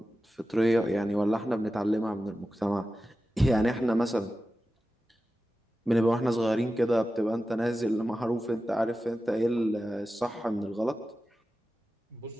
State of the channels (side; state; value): both; normal; correlation 0.93